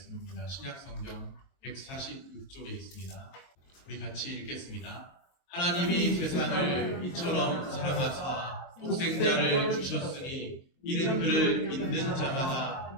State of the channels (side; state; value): right; late; 23 ms